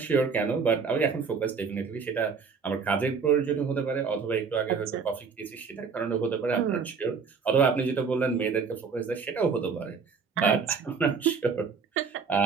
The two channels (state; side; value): quieter; left; 5.5 dB